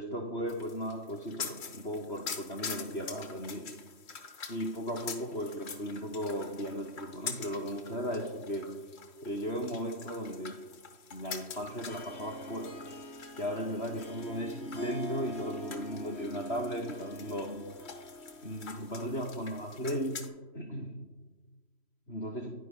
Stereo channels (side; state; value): right; late; 3.1 ms